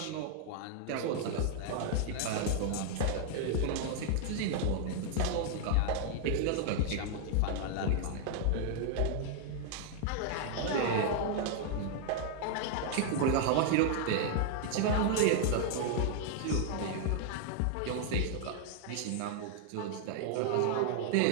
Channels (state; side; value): different; both; correlation 0.00